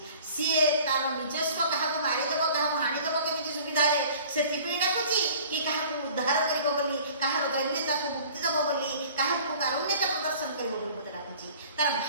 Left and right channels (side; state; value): both; inverted; correlation -0.48